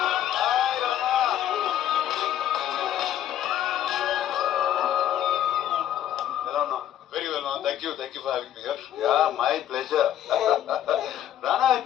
హాయ్ రానా. ఎలా ఉన్నావు? Very well ma'am, thank you for having me here. Yeah my pleasure. రానా,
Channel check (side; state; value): right; quieter; 11.3 dB